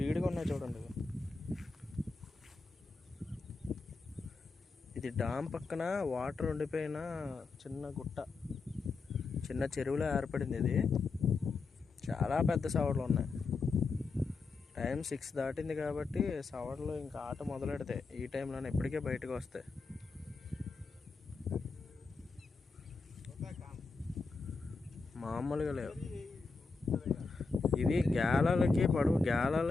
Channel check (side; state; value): right; quieter; 4.2 dB